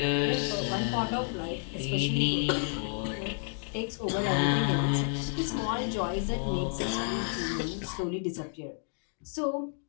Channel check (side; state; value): right; silent; 57 dB below the other